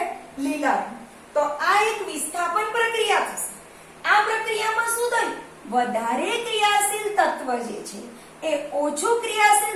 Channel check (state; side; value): identical; both; correlation 1.00